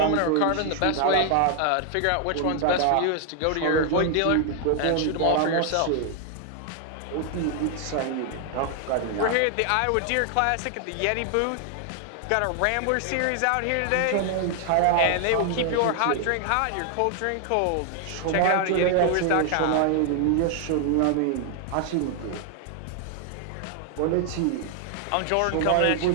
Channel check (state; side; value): different; both; correlation 0.00